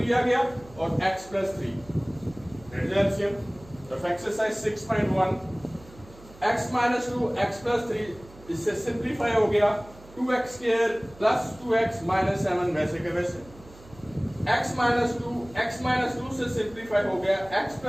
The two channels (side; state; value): right; noise; hum, 22 dB below the sound